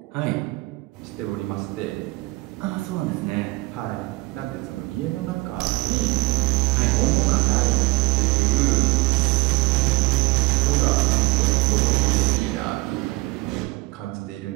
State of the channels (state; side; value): quieter; left; 22.4 dB